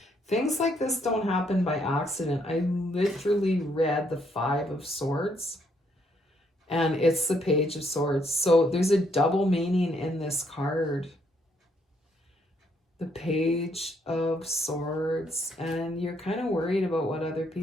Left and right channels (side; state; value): both; normal; correlation 0.72